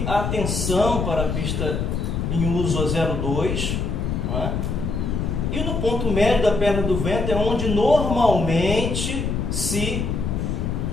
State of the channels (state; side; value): noise; left; rumble, 1 dB below the sound